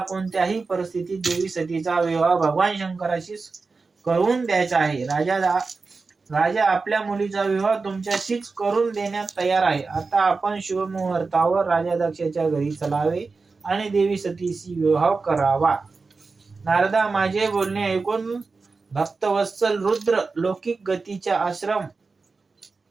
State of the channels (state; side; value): quieter; left; 4.2 dB